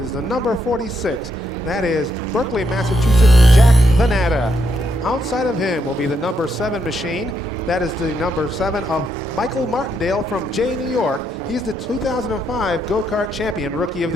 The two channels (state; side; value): normal; both; correlation 0.78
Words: the number 46. That is Berkeley, Massachusetts, Jack Venata. Outside of him will be the number 7 machine. That is the number 7 of Michael Martindale from Jay, New York. He's the 2005 Go-Kart Champion Rookie of